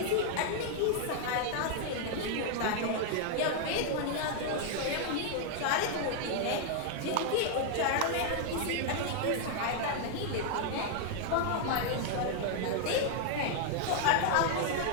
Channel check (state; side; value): different; both; correlation 0.00